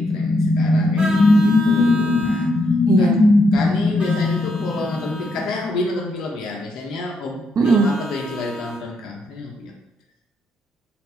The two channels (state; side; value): normal; both; correlation 0.78